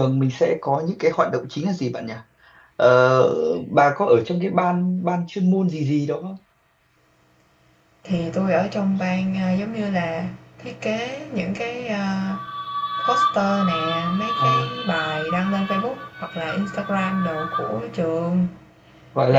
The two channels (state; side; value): identical; both; correlation 1.00